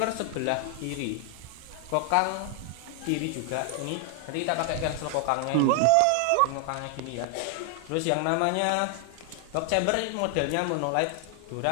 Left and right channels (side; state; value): both; different; correlation 0.00